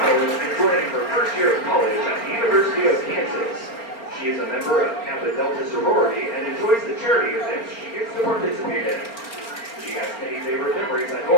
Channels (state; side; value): late; right; 4.3 ms